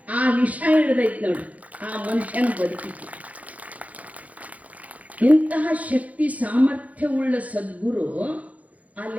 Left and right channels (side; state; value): left; late; 0.071 ms